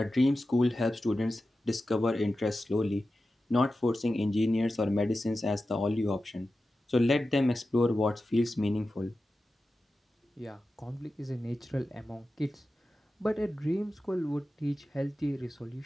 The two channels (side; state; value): both; normal; correlation 0.93